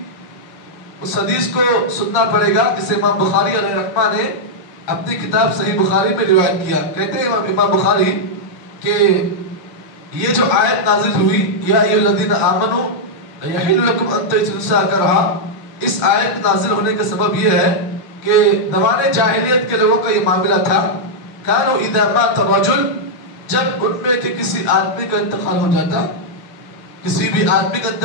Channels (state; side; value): late; right; 6.5 ms